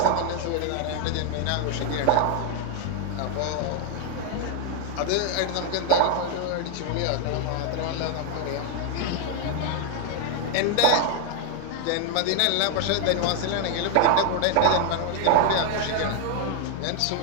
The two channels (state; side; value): different; both; correlation 0.00